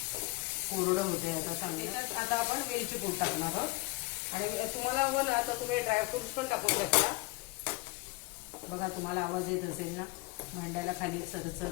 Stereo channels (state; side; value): quieter; right; 24.2 dB